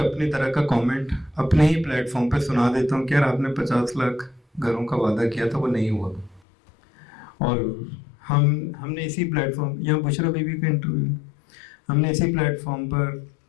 अपनी तरह का कमेंट अपने ही प्लेटफॉर्म पे सुना देता हूँ कि यार आपने 50 लाख घरों का वादा किया था, वो नहीं हुआ। और हमने इसी प्लेटफॉर्म, यहाँ बुशरा बीबी का इंटरव्यू, हमने इसी प्लेटफॉर्म पर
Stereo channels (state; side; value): drops out; right; at 6.4 s